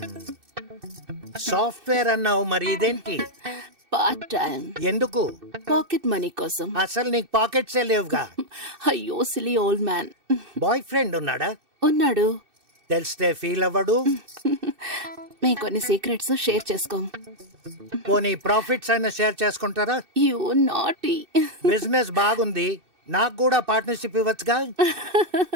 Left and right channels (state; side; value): late; left; 2.6 ms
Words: సాఫ్ట్వేర్ అన్నావు, మరి ఇదేంటి? Part time. ఎందుకు? పాకెట్ మనీ కోసం. అసలు నీకు పాకెట్సే లేవుగా. అయ్యో silly old man. Boy friend ఉన్నాడా? ఉన్నాడు. తెలిస్తే ఫీల్ అవ్వడు. మేము కొన్ని సీక్రెట్స్ షేర్ చేసుకోం. పోనీ ప్రాఫిట్స్ అయినా షేర్ చేసుకుంటారా? You naughty. బిజినెస్ బాగుంది, నాకు కూడా పార్ట్నర్షిప్ ఇవ్వచ్చుగా.